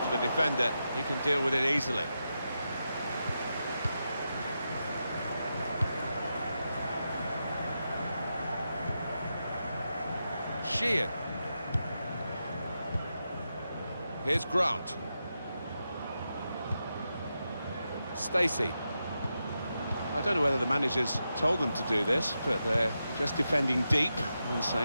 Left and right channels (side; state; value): both; inverted; correlation -0.88